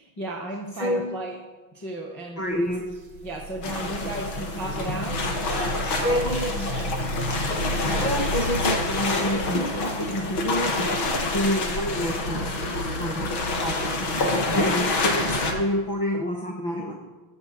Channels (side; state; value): right; late; 6.0 ms